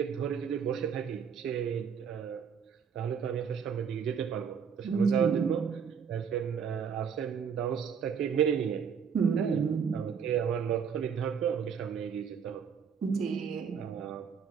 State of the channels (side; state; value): left; quieter; 6.9 dB